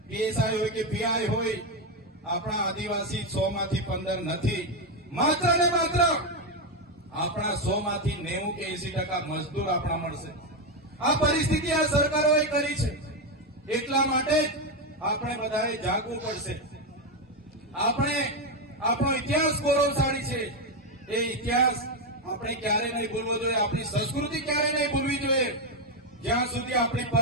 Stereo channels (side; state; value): both; normal; correlation 0.07